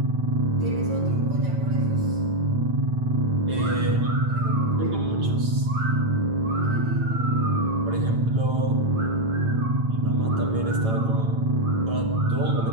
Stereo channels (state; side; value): late; left; 9.0 ms